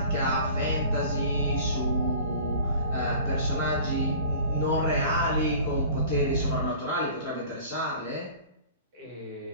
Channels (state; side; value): inverted; both; correlation -0.43